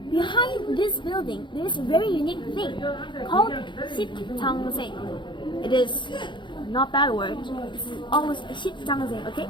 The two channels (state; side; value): late; right; 0.23 ms